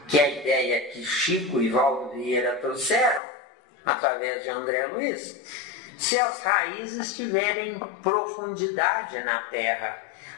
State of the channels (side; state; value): right; drops out; at 3.2 s